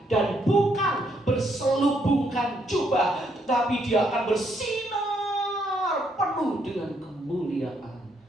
dan bukan berselubungkan jubah, tetapi dia akan bersinar penuh dengan kemuliaan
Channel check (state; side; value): normal; both; correlation 0.73